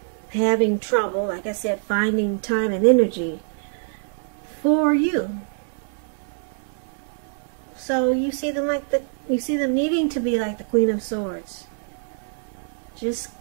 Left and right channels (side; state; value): left; silent; digital silence